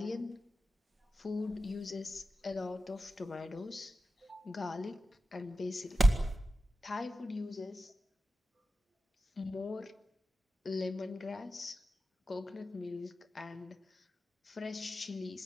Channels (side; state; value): both; normal; correlation 0.92